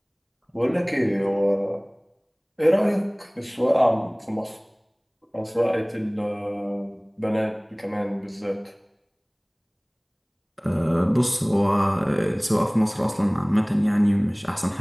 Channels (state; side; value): identical; both; correlation 1.00